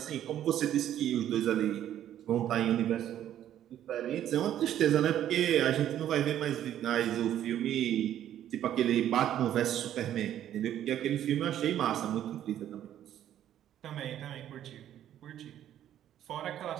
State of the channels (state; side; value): quieter; left; 11.3 dB